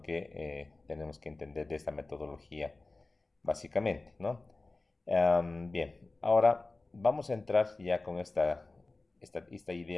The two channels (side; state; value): right; quieter; 3.3 dB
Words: que tenemos que entender de esta metodología, básicamente, ¿no? Bien, ahora vamos a entrar ya con esta